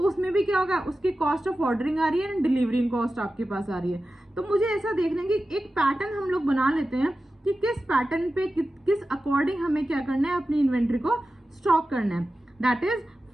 उसमें भी क्या होगा, उसकी कॉस्ट ऑफ ऑर्डरिंग आ रही है एंड डिलीवरिंग कॉस्ट आपके पास आ रही है। तो मुझे ऐसा देखना कि एक पैटर्न हम लोग बना लेते हैं कि किस पैटर्न पे किस अकॉर्डिंग हमें क्या करना है, अपनी इन्वेंट्री को स्टॉक करना है। That is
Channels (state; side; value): normal; both; correlation 0.94